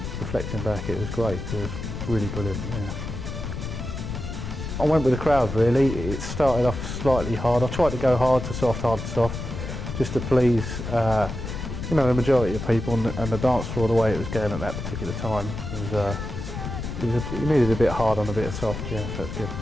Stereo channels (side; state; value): left; noise; rumble, 6 dB below the sound